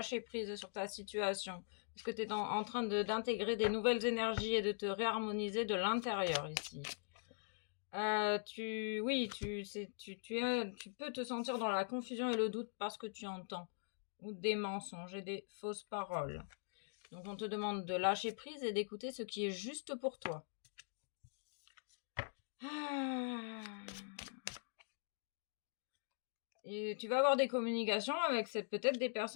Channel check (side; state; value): right; silent; digital silence